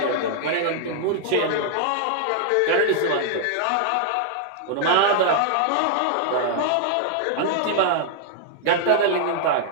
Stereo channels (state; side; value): different; both; correlation -0.01